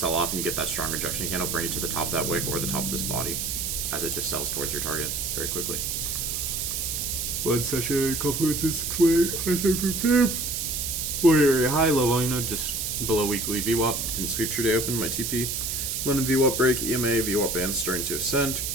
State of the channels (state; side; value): noise; right; hiss, 2 dB below the sound